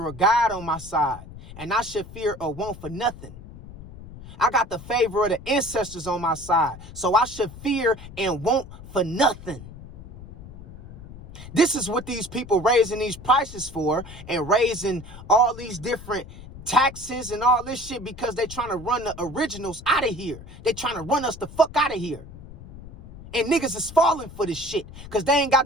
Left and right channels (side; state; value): left; noise; rumble, 16 dB below the sound